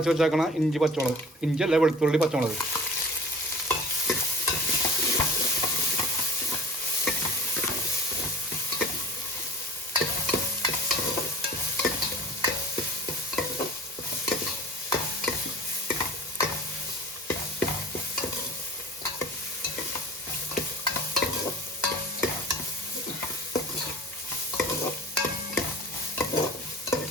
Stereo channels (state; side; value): normal; both; correlation 0.42